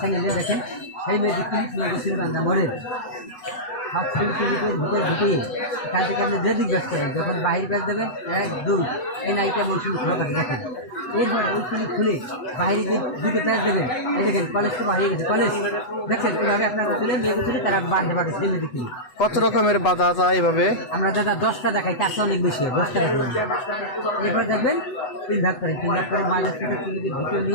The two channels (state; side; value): late; right; 8.1 ms